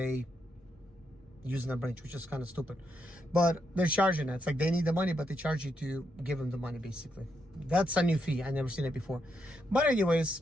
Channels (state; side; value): normal; both; correlation 0.80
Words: using the branch, which is kind of stupid, but they're charging it. It's like they need the money, but they charge you to give them the money, basically. That's a new fee. I never seen it before. But